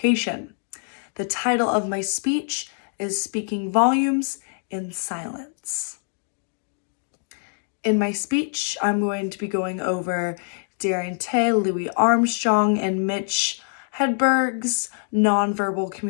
The title of my speech is Speaking Volumes in Silence. In my speech, I'm going to be going over Darian Tay, Louis Armstrong, and Mitch Hedberg's nonverbal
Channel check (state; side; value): silent; right; 62 dB below the other